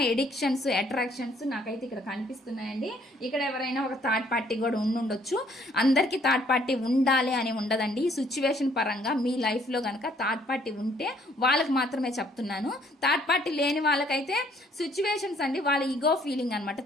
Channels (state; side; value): normal; both; correlation 0.63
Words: ఎడిక్షన్స్, అట్రాక్షన్స్ నాకైతే ఇక్కడ కనిపిస్తున్నాయండి. ఇక్కడ ఎవరైనా ఒక థర్డ్ పార్టీ కూడా ఉండొచ్చు. అందరికీ థర్డ్ పార్టీ ఉండాలి అని ఉండదండి. ఈ సిచ్యువేషన్ పరంగా మీ లైఫ్లో కనుక థర్డ్ పార్టీ ఉంటే వాళ్ళకి మాత్రమే చెప్తున్నాను. థర్డ్ పార్టీ లేని వాళ్ళకైతే సిచ్యువేషన్స్ అండి, వాళ్ళ ఈగో ఫీలింగ్ అనమాట.